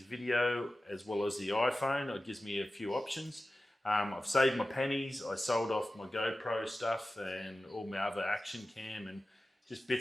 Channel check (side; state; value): both; normal; correlation 0.95